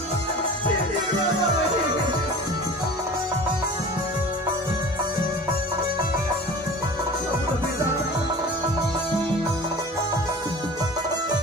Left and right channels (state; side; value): normal; both; correlation 0.39